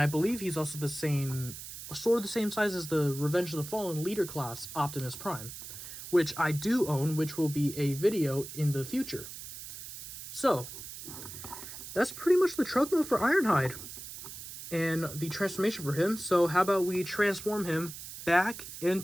believe he's also the same, sort of the same size as the Revenge of the Fallen leader class Optimus Prime, which I do own, which will be a video in the future. So, that's pretty much the truck mode for Ironhide and the transformation for him. So how about we transform him back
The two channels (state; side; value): noise; right; hiss, 11 dB below the sound